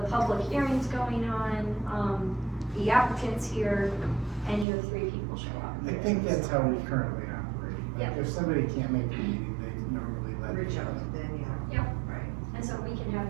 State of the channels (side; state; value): left; drops out; at 4.7 s